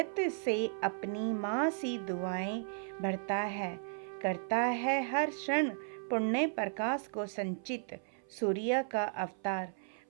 से अपनी माँ सी दुआएं भरता है। करता है हर क्षण पुण्य प्रकाश को संचित, सूर्य का अवतार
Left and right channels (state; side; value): silent; left; 54 dB below the other